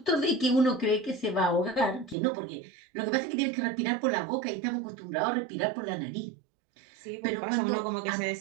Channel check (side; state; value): left; drops out; at 2.1 s